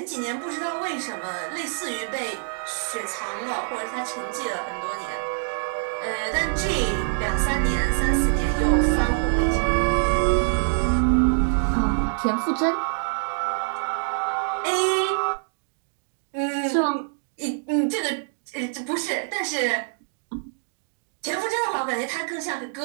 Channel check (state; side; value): silent; left; digital silence